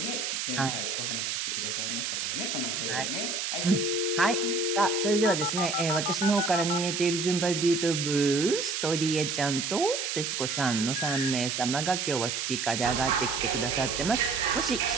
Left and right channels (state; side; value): noise; right; hiss, 2 dB below the sound